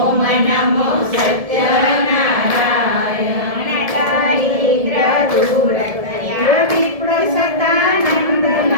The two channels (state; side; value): late; left; 1.7 ms